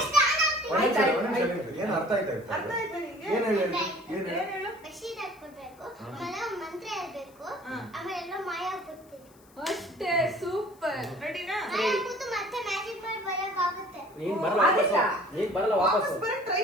ಏನ್ ಅರ್ಥ ಆಯ್ತಾ? ಅರ್ಥ ಆಯ್ತಾ ನಿಂಗೆ? ಏನ್ ಹೇಳು? ಬೆಡ್ಶೀಟ್ ಹಾಕ್ಬಿಡ್ಬೇಕು, ಆಮೇಲೆ ಮಂತ್ರ ಹೇಳ್ಬೇಕು, ಆಮೇಲೆ ಎಲ್ಲ ಮಾಯ ಆಗ್ಬಿಡ್ತೀವಿ. ಅಷ್ಟೇ. ಸೂಪರ್. ರೆಡಿನಾ? ಕೂತು ಮತ್ತೆ ಮ್ಯಾಜಿಕ್ ಮಾಡಿ ಬರಕ್ಕಾಗುತ್ತೆ. ನೀನ್ ಬರಲ್ಲ ವಾಪಸ್ ಬರಕ್ ಟ್ರೈ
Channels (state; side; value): noise; left; hiss, 29 dB below the sound